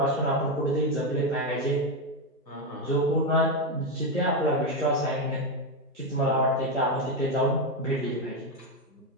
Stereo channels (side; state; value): both; normal; correlation 0.08